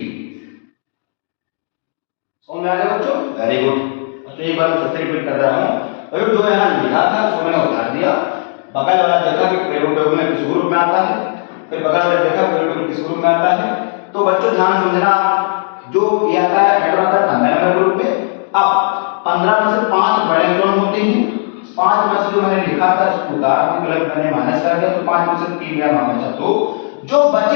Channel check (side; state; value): right; silent; 56 dB below the other